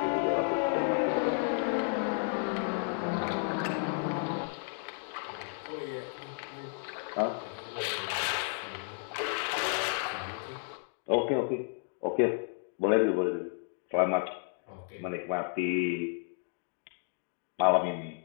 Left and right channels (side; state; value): right; silent; 56 dB below the other